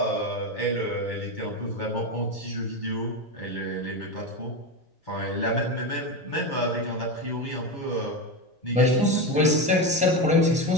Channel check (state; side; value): normal; both; correlation 0.16